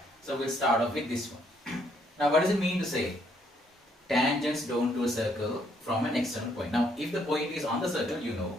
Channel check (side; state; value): both; normal; correlation 0.70